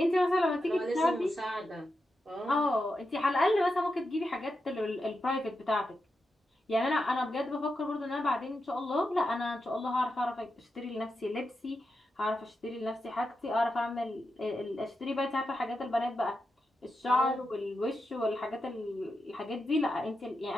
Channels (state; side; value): normal; both; correlation 0.88